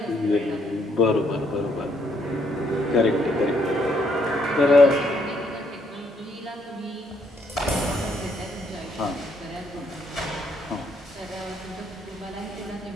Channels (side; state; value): both; normal; correlation 0.71